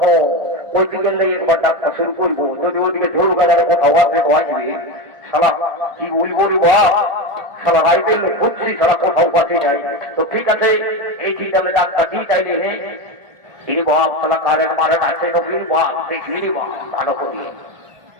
ওই দিকে একবার ডাকটা শুরু করবো। যদি ওইদিকে ঝোল গাজারে কোথাও আসবে তো আসবে, শালা কি বলবো রে বাপ, শালা রাইতের লোক খুঁজছি, শালা কোথাও পাচ্ছি নাই। তো ঠিক আছে এই ঠিক আমি ডাক্তার দিই চাইলে হে তিনি বাপ শালা কারে মারে আছে নবীর বাপ দেখলি বাপ ভালো করি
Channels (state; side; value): late; left; 1.4 ms